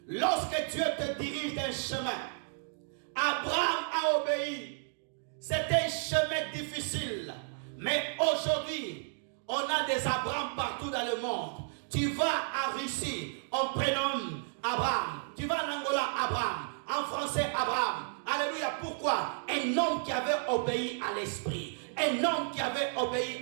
Lorsque Dieu te dirige d'un chemin, Abraham a obéi. C'était un chemin difficile. Mais aujourd'hui, on a des Abraham partout dans le monde. Tu vas en Russie, on prénomme Abraham. Tu vas en Angola, Abraham. En français, Abraham. Alléluia. Pourquoi? Un homme qui avait obéi à l'esprit. Un homme qui avait obéi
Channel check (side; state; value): left; silent; digital silence